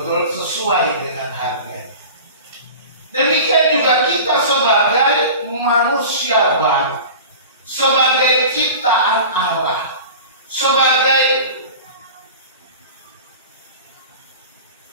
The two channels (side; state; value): both; inverted; correlation -0.36